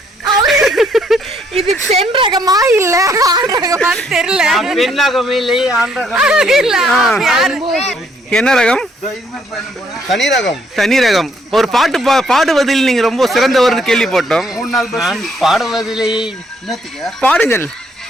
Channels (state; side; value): normal; both; correlation 0.68